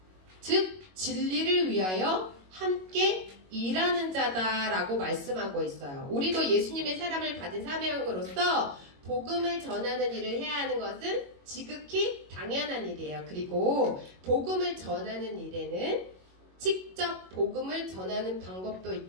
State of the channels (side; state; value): left; late; 22 ms